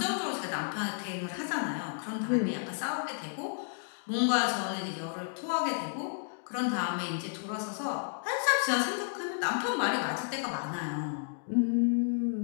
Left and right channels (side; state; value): right; silent; digital silence